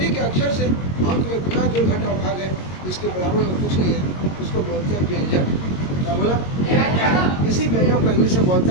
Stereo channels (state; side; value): late; right; 22 ms